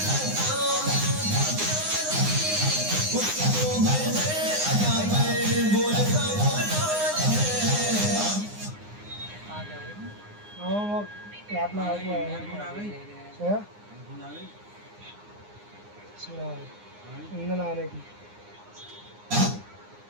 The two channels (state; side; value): late; left; 9.7 ms